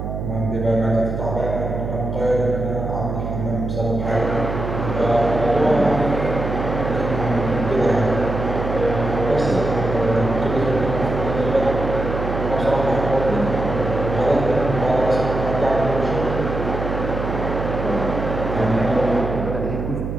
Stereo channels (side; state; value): right; noise; hum, 5 dB below the sound